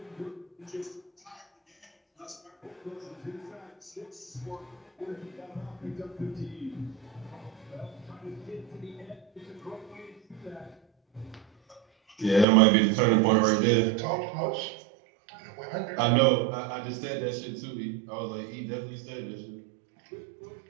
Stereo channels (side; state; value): left; drops out; at 12.5 s